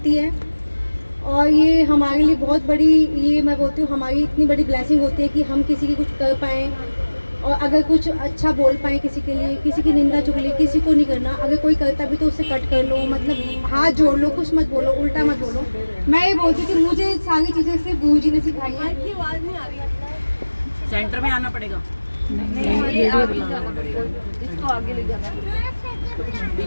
है और ये हमारे लिए बहुत बड़ी, ये मैं बोलती हूँ हमारी इतनी बड़ी ब्लेसिंग होती है कि हम किसी की कुछ कर पाएँ और अगर कुछ अच्छा बोल पाएँ किसी के लिए, किसी की निंदा चुगली किसी को नहीं करना। अगर कोई करता भी तो उससे कट कर लो, मतलब हाथ जोड़ लो, कुछ मत बोलो, उल्टा मत बोलो। मैं ये बोलती हूँ कि मुझे सारी चीज़ें सिर्फ गुरु जी ने सिखाई है। आवाज़ नहीं आ रही, सेंटर में आना पड़ेगा। नहीं, ये आगे जाना पड़ेगा, इसको आगे ले जाना,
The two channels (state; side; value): inverted; both; correlation -1.00